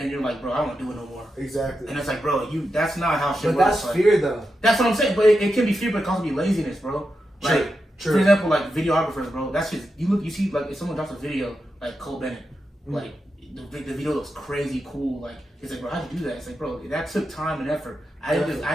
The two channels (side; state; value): both; normal; correlation 0.88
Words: you're like, bro, I don't want to do it no more. Exactly. And it's like, bro, that's not how shit works. But that's like, fear, though. That's what I'm saying. But it can be fear, but it can also be laziness, bro. Like, True. For example, like videographers, bro. That's just you see, like if someone drops a video, like Cole Bennett, like the video looks crazy cool. Like it's like, bro, how'd you do that? It's like, bro, that took time and effort. I